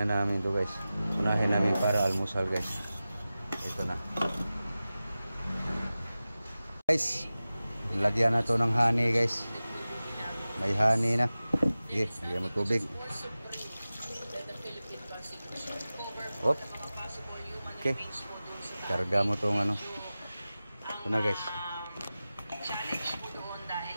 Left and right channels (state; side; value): inverted; both; correlation -0.96